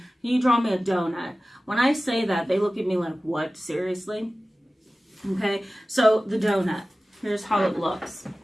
you draw me a donut? When I say that, they look at me like, what? Seriously? Okay, so the donut. Here's how it looks.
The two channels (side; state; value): both; normal; correlation 0.96